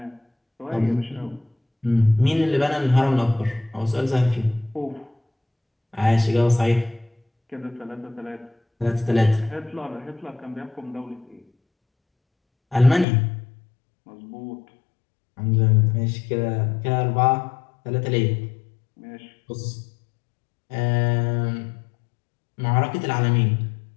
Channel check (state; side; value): drops out; right; at 13.1 s